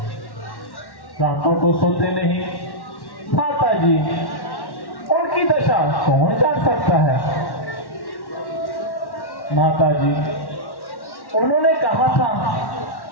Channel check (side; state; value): right; late; 1.1 ms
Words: रातों को सोते नहीं। माता जी, उनकी दशा कौन जान सकता है? माता जी, उन्होंने कहा था